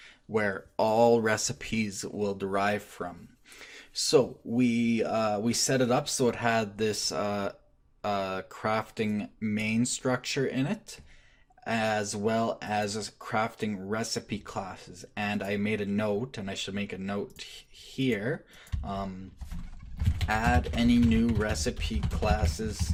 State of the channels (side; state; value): both; identical; correlation 1.00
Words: where all recipes will derive from. So we set it up so it had this crafting main structure in it, as well as crafting recipe classes. And I made a note, and I should make a note here. Add any new recipe classes